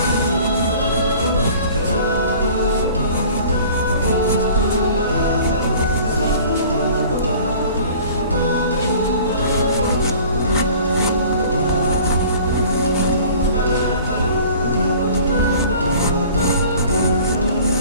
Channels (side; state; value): both; inverted; correlation -0.47